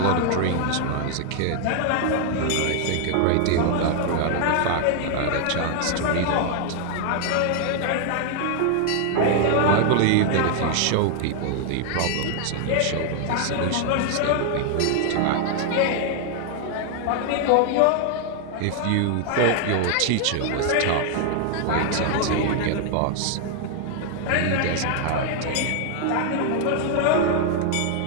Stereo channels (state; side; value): different; both; correlation 0.00